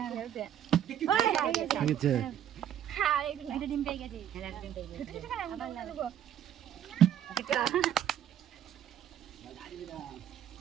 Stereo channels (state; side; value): quieter; left; 10.3 dB